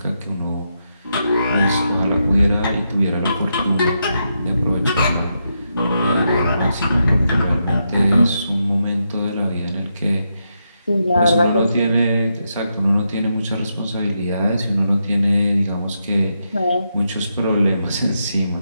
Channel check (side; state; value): both; inverted; correlation -0.83